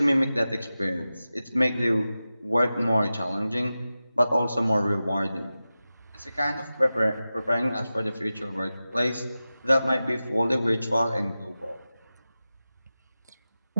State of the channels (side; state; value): both; inverted; correlation -0.94